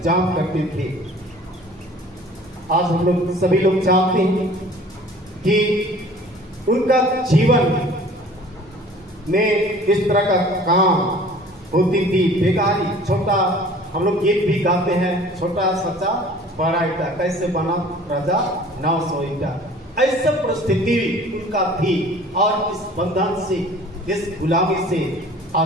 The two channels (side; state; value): both; normal; correlation 0.48